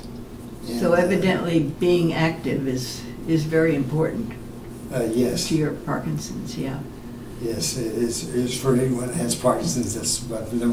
And, So evidently being active is very important yes. to your Parkinson's, yeah. Yes, it is for anyone that has Parkinson's. That's about the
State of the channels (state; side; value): identical; both; correlation 1.00